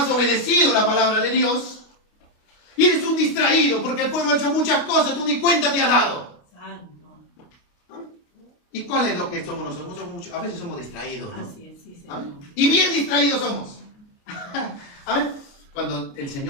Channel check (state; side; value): late; right; 28 ms